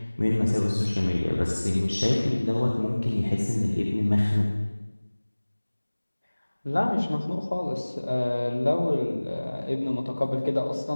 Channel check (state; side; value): inverted; both; correlation -1.00